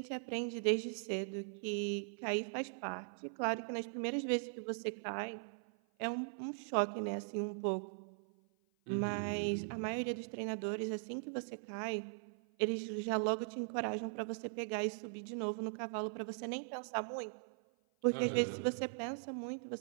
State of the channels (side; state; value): left; silent; 51 dB below the other